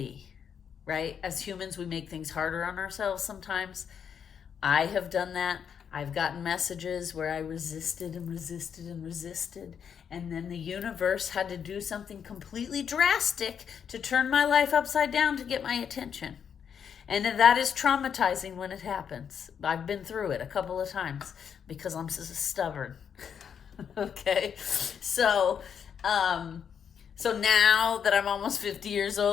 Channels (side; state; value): right; quieter; 7.7 dB